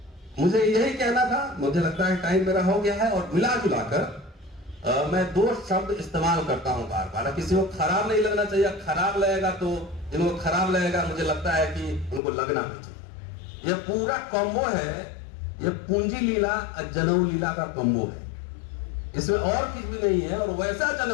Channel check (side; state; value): right; drops out; at 12.2 s